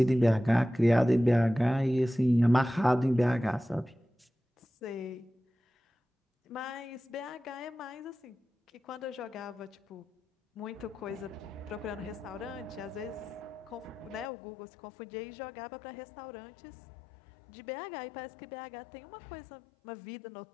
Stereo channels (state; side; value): drops out; right; at 14.3 s